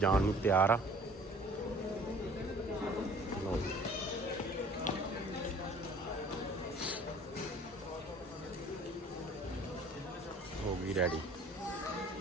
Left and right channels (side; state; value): both; normal; correlation 0.51